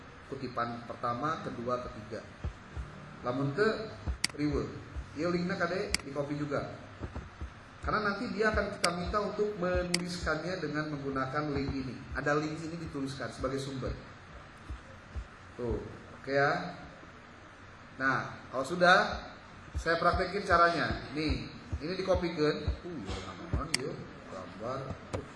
kutipan pertama, kedua, ketiga. Lamun teu riweuh. Ieu linkna kade di copy juga. Karena nanti dia akan kita minta untuk menuliskannya dengan menggunakan link ini. Ada link ini dituliskan sebagai sumber. Tuh, oke ya. Nah, kalau sudah saya praktekin caranya. Nih, ini dikopikeun. Ya naon ieu gambar.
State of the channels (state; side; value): identical; both; correlation 1.00